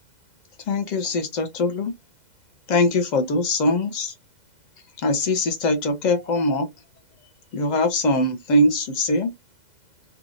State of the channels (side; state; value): right; late; 2.0 ms